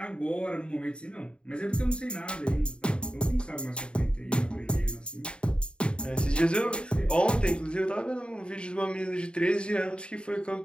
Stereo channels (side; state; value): right; late; 0.053 ms